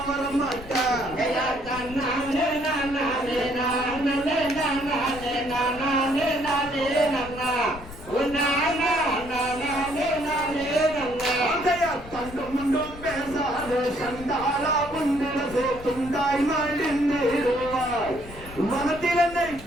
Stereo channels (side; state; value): left; noise; rumble, 15 dB below the sound